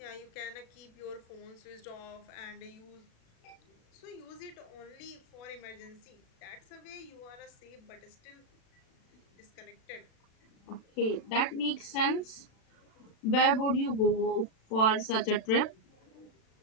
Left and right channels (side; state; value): right; late; 36 ms